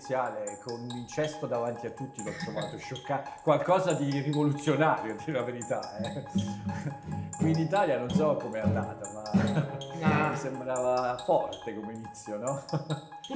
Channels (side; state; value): both; identical; correlation 1.00